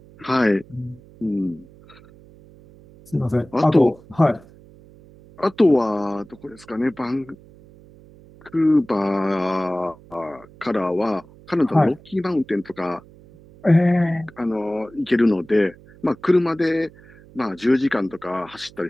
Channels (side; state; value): right; noise; hum, 24 dB below the sound